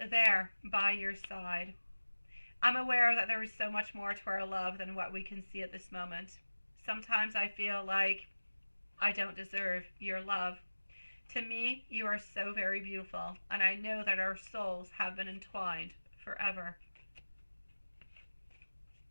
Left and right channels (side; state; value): both; inverted; correlation -1.00